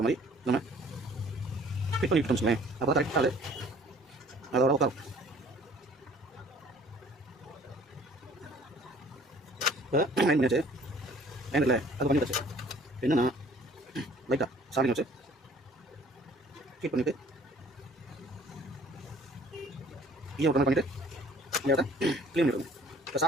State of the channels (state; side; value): normal; both; correlation 0.54